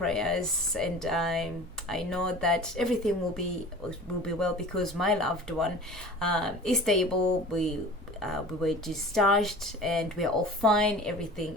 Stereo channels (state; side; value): normal; both; correlation 0.40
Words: and I know that everything will be well, because my loved one is stable. We were discharged and we're all fine. Everything